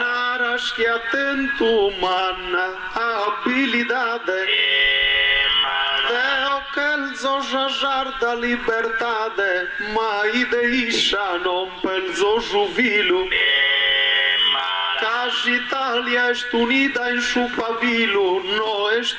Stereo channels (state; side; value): identical; both; correlation 1.00